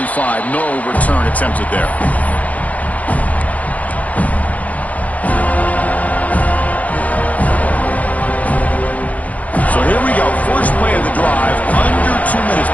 No return attempted there. So here we go. First play of the drive. Under 2 minutes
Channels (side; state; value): right; late; 0.072 ms